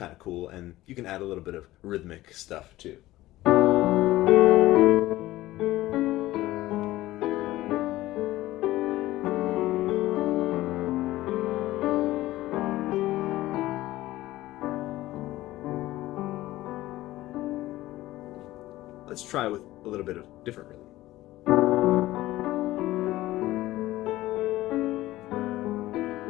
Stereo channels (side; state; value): right; quieter; 16.6 dB